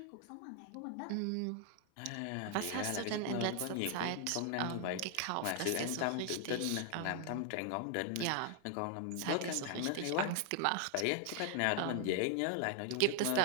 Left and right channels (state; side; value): different; both; correlation 0.00